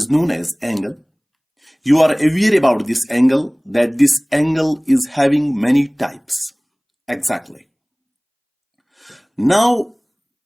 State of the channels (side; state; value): both; identical; correlation 1.00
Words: known as angle. You are aware about this angle, that this angle is having many types. Exactly. Now,